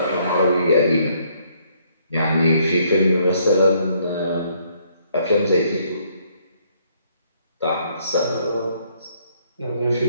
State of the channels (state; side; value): inverted; both; correlation -0.68